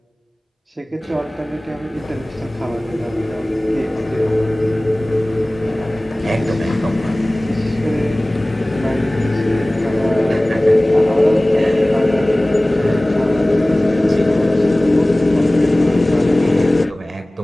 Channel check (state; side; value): normal; both; correlation 0.98